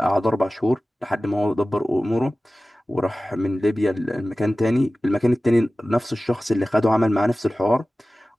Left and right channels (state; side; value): normal; both; correlation 0.97